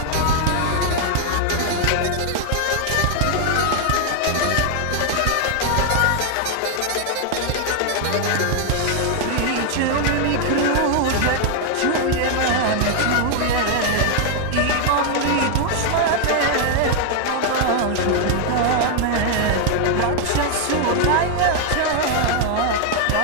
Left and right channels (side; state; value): both; different; correlation 0.00